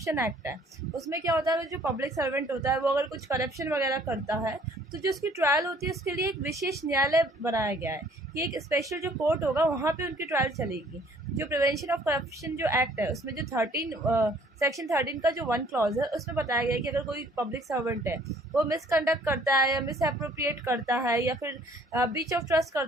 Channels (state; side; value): normal; both; correlation 0.58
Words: एक्ट है, उसमें क्या होता है, जो पब्लिक सर्वेंट होता है वो अगर कुछ करप्शन वगैरह करता है तो जो उसकी ट्रायल होती है उसके लिए एक विशेष न्यायालय बनाया गया है कि एक स्पेशल जो कोर्ट होगा वहाँ पे उनकी ट्रायल चलेगी। जो प्रिवेंशन ऑफ करप्शन जो एक्ट है उसमें जो सेक्शन 13 का जो 1 क्लॉज है उसमें बताया गया है कि अगर कोई पब्लिक सर्वेंट है वो मिसकंडक्ट करता है या मिस अप्रोप्रिएट करता है या फिर ब्रीच ऑफ ट्रस्ट